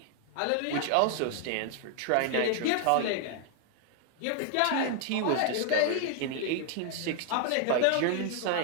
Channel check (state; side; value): different; both; correlation 0.00